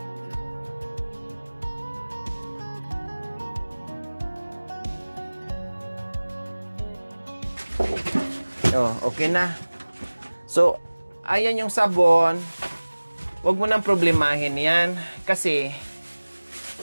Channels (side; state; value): both; inverted; correlation -1.00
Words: Oh, okay na. So, ayan yung sabon. Huwag mo nang problemahin yan. Kasi,